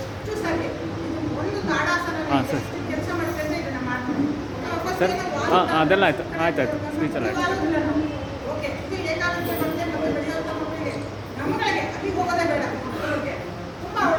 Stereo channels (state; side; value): identical; both; correlation 1.00